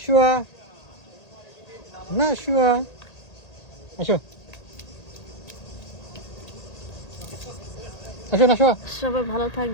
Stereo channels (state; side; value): late; right; 1.8 ms